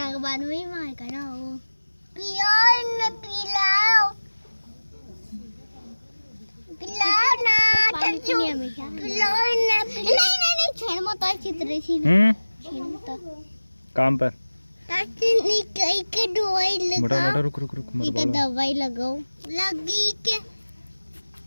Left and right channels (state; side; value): inverted; both; correlation -1.00